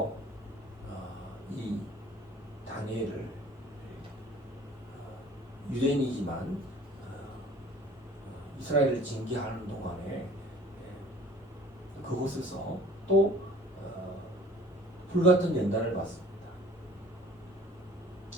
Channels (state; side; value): normal; both; correlation 0.50